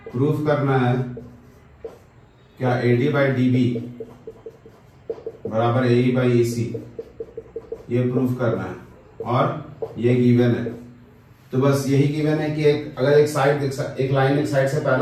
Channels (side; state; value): both; identical; correlation 1.00